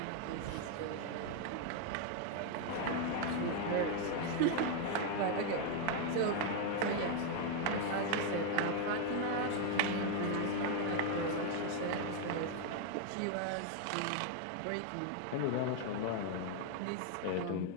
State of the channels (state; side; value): different; both; correlation 0.01